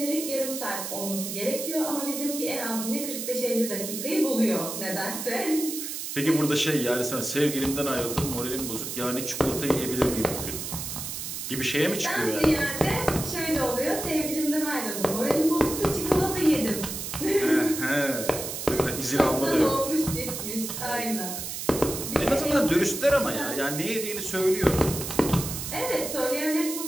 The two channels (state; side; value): noise; right; hiss, 6 dB below the sound